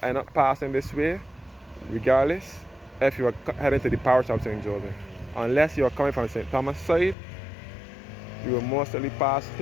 end up passing this way, regardless, if you are heading to the parish of St. Joseph. Unless you are coming from St. Thomas side, you will mostly pass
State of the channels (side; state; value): right; drops out; at 7.2 s